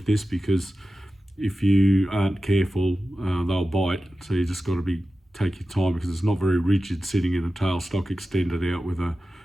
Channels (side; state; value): both; normal; correlation 0.94